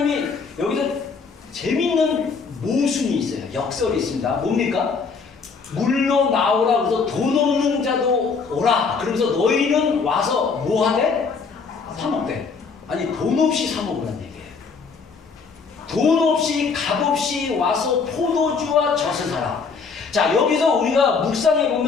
여기서 재밌는 모순이 있어요. 역설이 있습니다. 뭡니까? 물로 나오라. 그래서 돈 없는 자도 오라. 그러면서 너희는 와서 뭐 하대? 사 먹대. 아니, 돈 없이 사 먹으라는 얘기예요. 돈 없이 값 없이 와서 포도주와 젖을 사라. 자, 여기서 우리가 묵상해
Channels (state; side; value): quieter; right; 5.1 dB